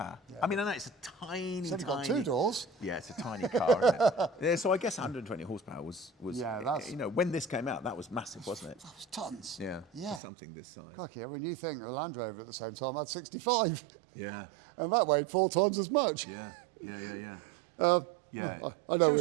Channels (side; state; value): left; drops out; at 10.2 s